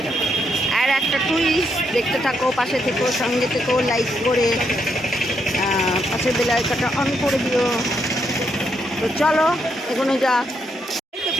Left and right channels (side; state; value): both; normal; correlation 0.78